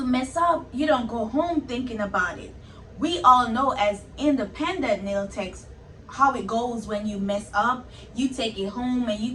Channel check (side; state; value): both; identical; correlation 1.00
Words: mess up, you don't go home thinking about it. We all know as independent nail techs how it goes. When you mess up, you take it home and